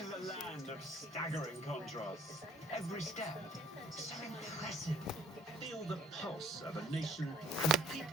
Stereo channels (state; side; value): normal; both; correlation 0.57